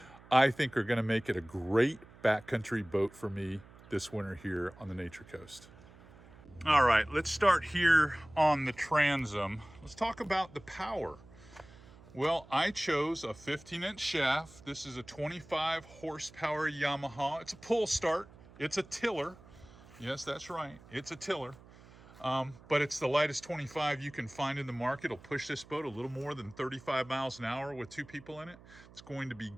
I think are going to make it a great backcountry boat for me this winter here on the Nature Coast. All right, let's start here on the transom. Let's talk about the power. Well, I chose a 15-inch shaft. This is a 25 horsepower Yamaha. It's a pull start. It's a tiller. Yes, that's right. It's a tiller. But it's the lightest 25 you can find in the market. It'll push this boat a little more than 35 miles an hour with two people in it. It's going to be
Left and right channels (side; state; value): right; noise; hum, 22 dB below the sound